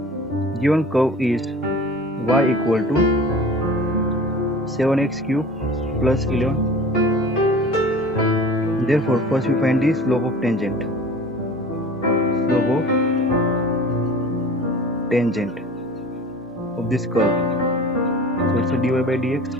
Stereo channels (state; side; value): normal; both; correlation 0.41